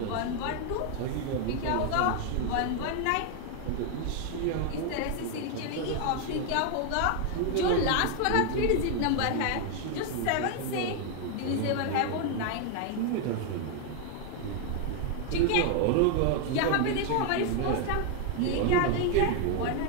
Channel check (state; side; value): different; both; correlation 0.00